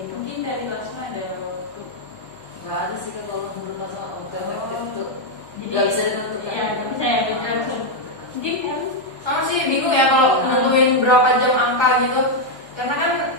gitu. Mungkin dari Lasma ada waktu. Nggak ada sih kan kalau menurut masa bukan efektif itu Jadi nggak bisa ditentukan. Iya, nggak bisa ya beda langsung. Mungkin kan Sama sih bingung ya kalau nentuin berapa jam angka gitu. Karena kan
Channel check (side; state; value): right; late; 1.2 ms